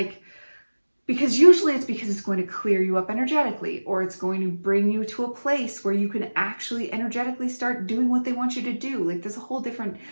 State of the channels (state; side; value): inverted; both; correlation -1.00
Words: because usually it's because it's going to clear you up energetically, or it's going to bring you to a place where you can actually energetically start doing what they want you to do. Like there's a whole different